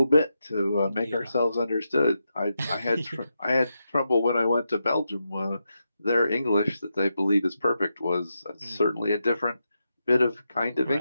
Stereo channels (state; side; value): inverted; both; correlation -0.86